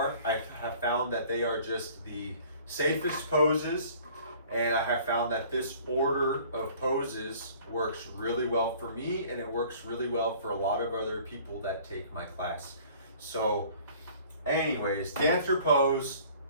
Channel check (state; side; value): inverted; both; correlation -0.51